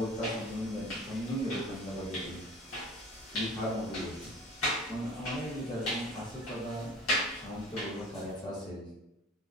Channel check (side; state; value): both; normal; correlation 0.42